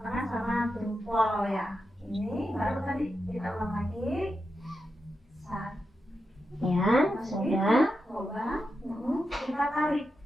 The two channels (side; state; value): both; normal; correlation 0.88